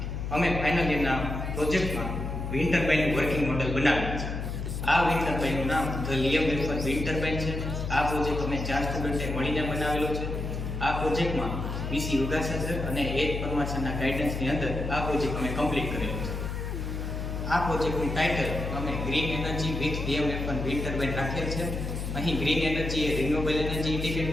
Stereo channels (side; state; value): left; noise; hum, 4 dB below the sound